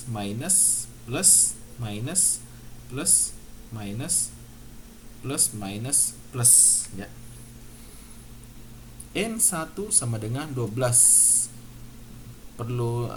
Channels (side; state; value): both; identical; correlation 1.00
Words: minus, plus, minus, plus, minus, plus, minus, plus, ya. N1 sama dengan 12. Perlu